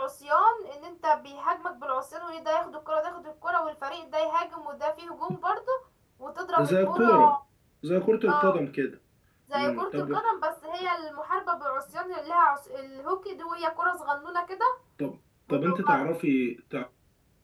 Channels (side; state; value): both; identical; correlation 1.00